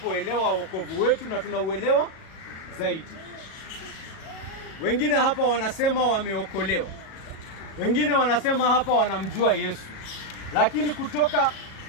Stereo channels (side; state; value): right; late; 37 ms